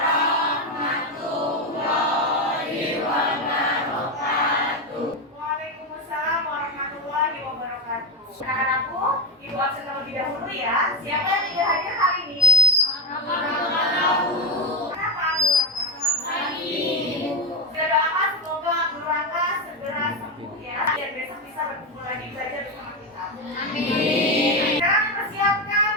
wabarakatuh. Waalaikumsalam warahmatullahi wabarakatuh. Anak-anakku, ibu absen terlebih dahulu ya. Siapa yang tidak hadir hari ini? Kenapa, Bu Raka? Sudah doakan semoga Bu Raka segera sembuh ya, biar besok bisa berkumpul lagi belajar bersama kita. Amin. Sekarang persiapkan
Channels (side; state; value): both; normal; correlation 0.12